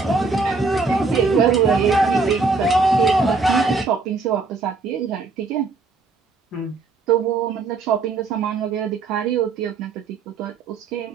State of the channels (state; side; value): quieter; left; 4.1 dB